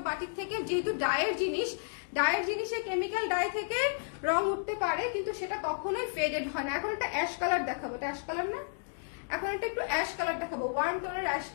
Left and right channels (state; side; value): silent; right; digital silence